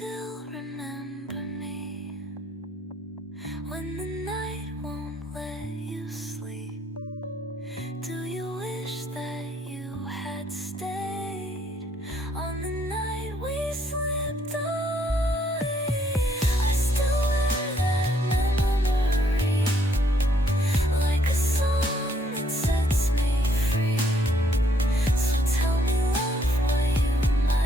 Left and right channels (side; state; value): both; normal; correlation 0.69